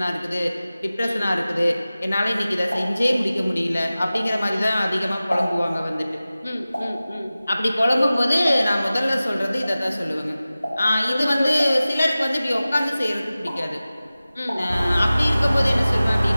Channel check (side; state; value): both; inverted; correlation -0.97